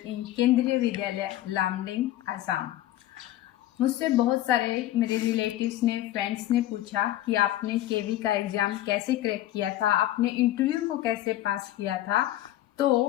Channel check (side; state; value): right; quieter; 14.3 dB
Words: इन केंद्रीय विद्यालय लामडिंग, असम. मुझसे बहुत सारे मेरे रिलेटिव्स ने, फ्रेंड्स ने पूछा कि आपने केवी का एग्ज़ाम कैसे क्रैक किया था, आपने इंटरव्यू को कैसे पास किया था.